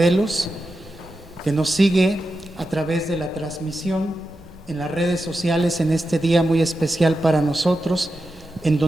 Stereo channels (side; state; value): right; noise; rumble, 27 dB below the sound